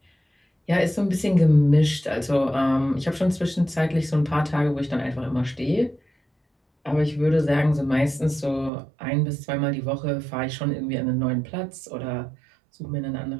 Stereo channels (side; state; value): left; drops out; at 8.7 s